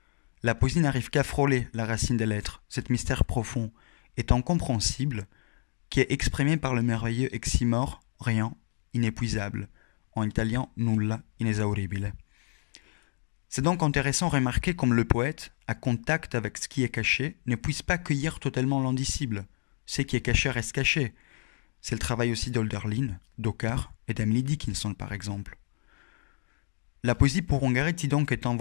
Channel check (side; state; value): right; silent; digital silence